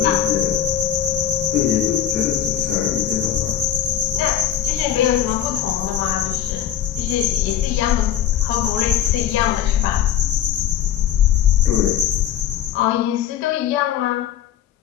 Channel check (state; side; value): quieter; right; 10.2 dB